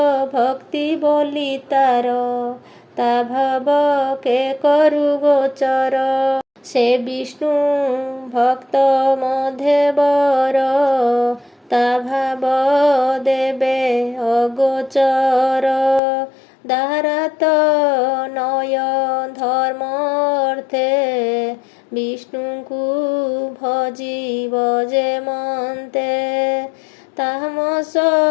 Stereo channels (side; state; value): right; drops out; at 16.0 s